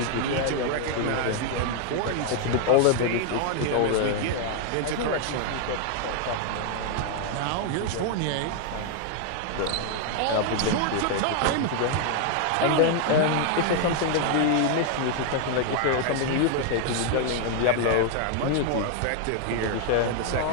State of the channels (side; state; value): both; different; correlation 0.00